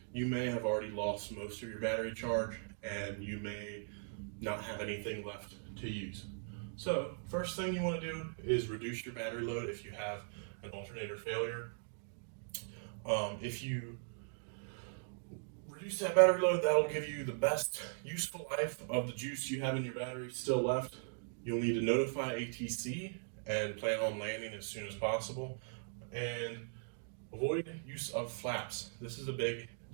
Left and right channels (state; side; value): silent; left; digital silence